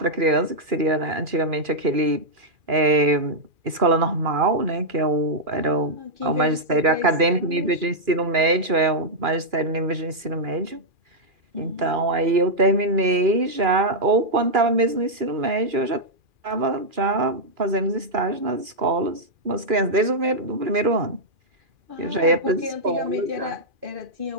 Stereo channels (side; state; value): left; late; 2.4 ms